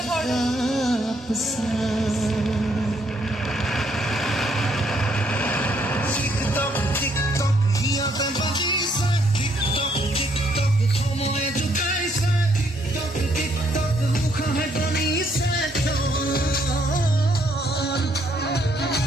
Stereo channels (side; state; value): both; normal; correlation 0.70